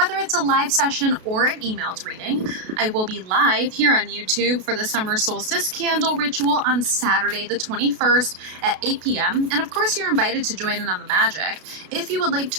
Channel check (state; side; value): late; left; 32 ms